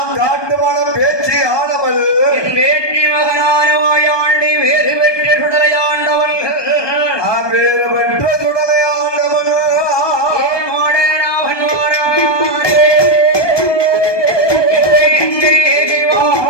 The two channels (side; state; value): right; late; 1.2 ms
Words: காட்டுவன பேச்சு ஆனவள் என் வேற்றி மகனான மாயாண்டி வேறு பெற்ற சுடலை ஆண்டவள் வேறு பெற்ற சுடலை ஆண்டவள்